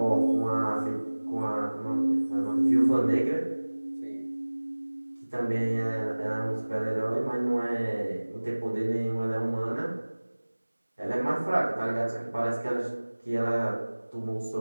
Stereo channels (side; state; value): both; inverted; correlation -1.00